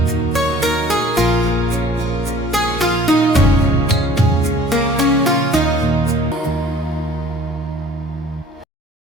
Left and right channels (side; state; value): both; normal; correlation 0.50